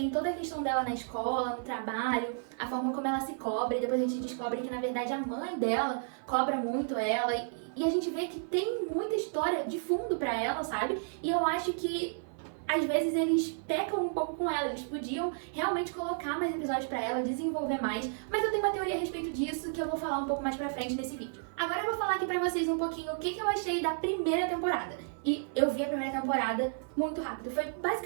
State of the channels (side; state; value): left; silent; 55 dB below the other